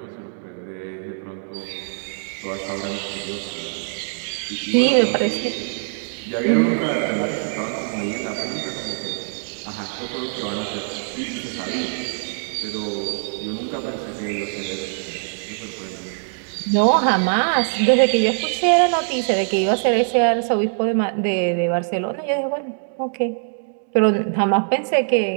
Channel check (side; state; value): left; silent; digital silence